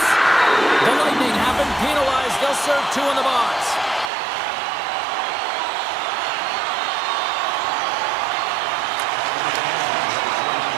The Lightning have been penalized. They'll serve 2 in the box.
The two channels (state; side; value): drops out; left; at 4.1 s